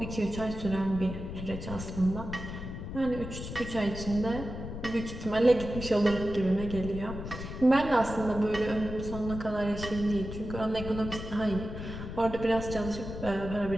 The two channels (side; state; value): left; noise; rumble, 8 dB below the sound